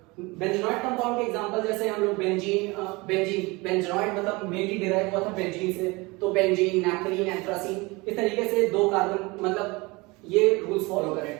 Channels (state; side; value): quieter; left; 24.5 dB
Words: बेंजोनॉइड कंपाउंड के एग्जांपल जैसे हम लोग बेंजोनॉइड मतलब मेनली डिराइव हुआ था बेंजीन से, तो बेंजीन, नैप्थलीन, एंथ्रासीन, इस तरीके से 2 कार्बन मतलब ये रूल्स फॉलो करें।